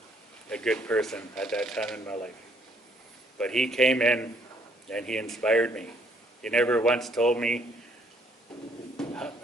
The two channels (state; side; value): normal; both; correlation 0.66